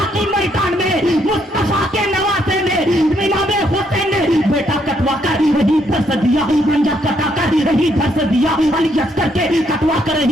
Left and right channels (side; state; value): both; normal; correlation 0.73